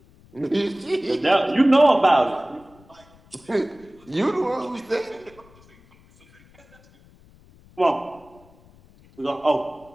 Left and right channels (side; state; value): left; noise; rumble, 27 dB below the sound